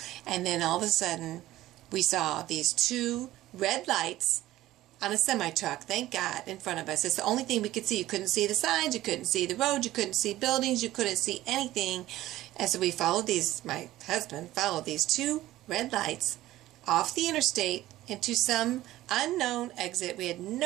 And then all of a sudden, we saw these 2 red lights on a semi-truck, thank God, in front of us. It's the only thing we could see. You couldn't see the signs, you couldn't see the road, you couldn't see buildings, you couldn't see anything. And so we followed my husband followed these 2 red lights off the interstate into some unknown exit. We had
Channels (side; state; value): left; quieter; 15.5 dB